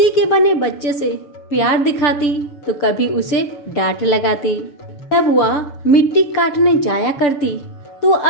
के बने बच्चे से प्यार दिखाती तो कभी उसे डांट लगाती। जब वह मिट्टी काटने जाया करती तो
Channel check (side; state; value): right; late; 6.8 ms